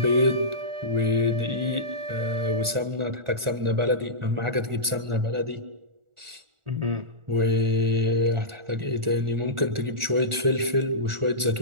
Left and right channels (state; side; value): late; left; 1.4 ms